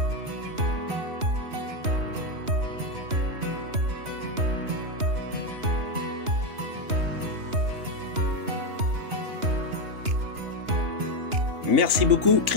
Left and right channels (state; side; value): late; left; 2.9 ms